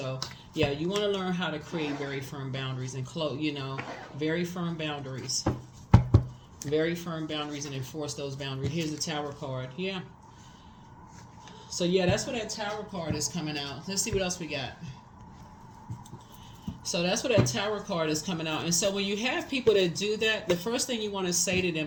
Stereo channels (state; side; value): identical; both; correlation 1.00